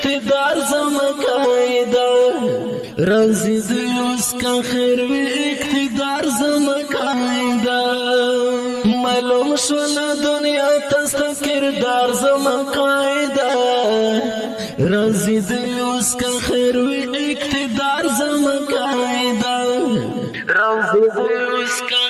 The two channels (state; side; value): identical; both; correlation 1.00